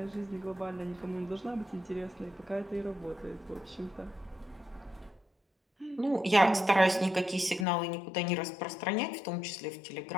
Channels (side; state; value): right; drops out; at 7.7 s